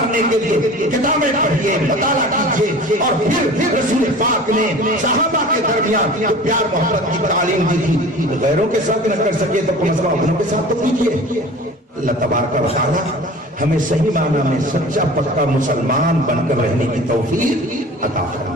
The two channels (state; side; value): normal; both; correlation 0.41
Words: کے لیے کتابیں پڑھیے، مطالعہ کیجیے، اور پھر رسول پاک نے صحابہ کے درمیان جو پیار محبت کی تعلیم دی تھی، غیروں کے ساتھ نہ کر سکے تو کم از کم اپنوں کے ساتھ تو کیجیے۔ اللہ تبارک و تعالی ہمیں صحیح معنی میں سچا پکا مسلمان بن کر رہنے کی توفیق عطا